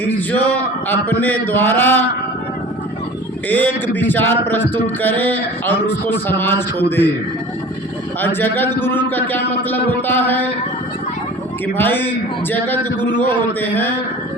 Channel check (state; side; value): normal; both; correlation 0.41